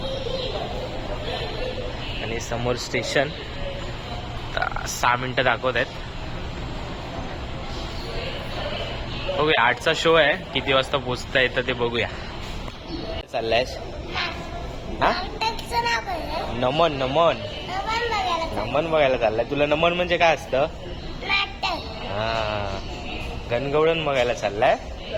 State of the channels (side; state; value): both; identical; correlation 1.00